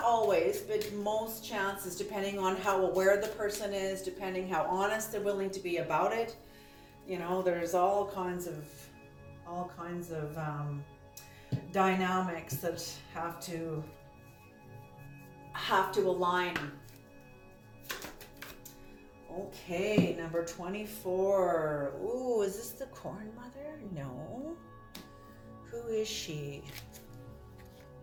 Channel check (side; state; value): both; identical; correlation 1.00